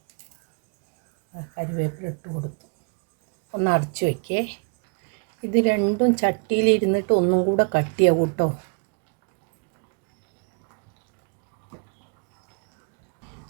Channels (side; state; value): left; quieter; 37.7 dB